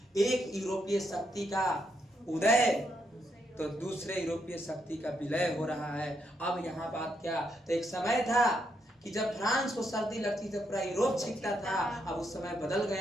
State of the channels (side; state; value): both; normal; correlation 0.78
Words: एक यूरोपीय शक्ति का उदय तो दूसरे यूरोपीय शक्ति का विलय हो रहा है। अब यहाँ बात क्या तो एक समय था कि जब फ्रांस को सर्दी लगती थी पूरा यूरोप छींकता था अब उस समय बदल